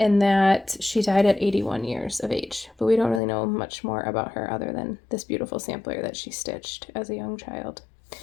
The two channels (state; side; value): drops out; right; at 3.2 s